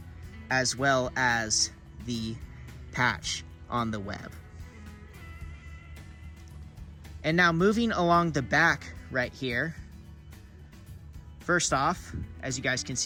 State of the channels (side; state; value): both; identical; correlation 1.00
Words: as well as the patch on the web. And now moving along the back right here, first off, as you guys can